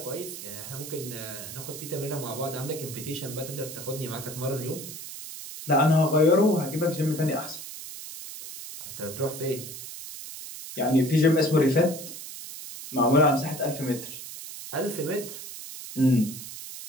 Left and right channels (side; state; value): right; noise; hiss, 11 dB below the sound